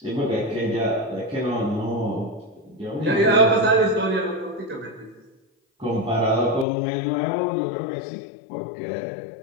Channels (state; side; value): drops out; right; at 6.7 s